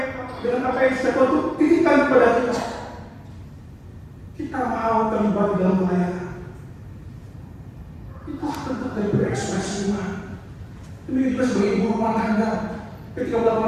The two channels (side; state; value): both; identical; correlation 1.00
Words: dengan apa yang sudah Tuhan titipkan kepada kita. Kita mau terlibat dalam pelayanan. Itulah bentuk dari berekspresi iman. Demikian juga sebagai ibu rumah tangga. Ketika